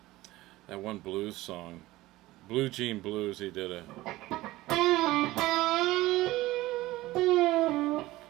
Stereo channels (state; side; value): quieter; left; 17.9 dB